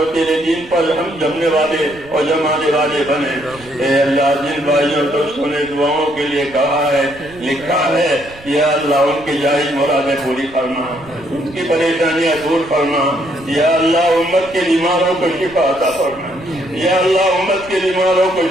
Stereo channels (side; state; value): right; noise; rumble, 22 dB below the sound